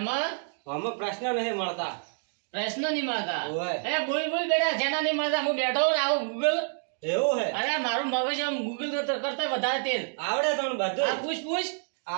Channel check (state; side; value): silent; left; digital silence